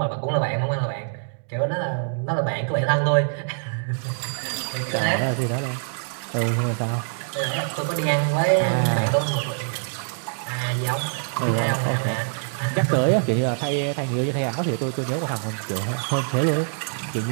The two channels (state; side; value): silent; left; digital silence